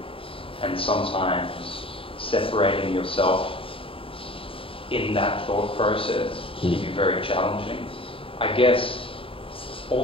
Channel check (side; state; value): right; late; 0.26 ms